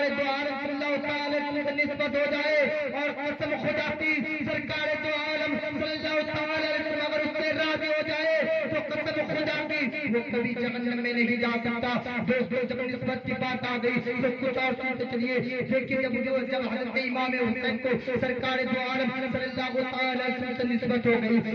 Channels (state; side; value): identical; both; correlation 1.00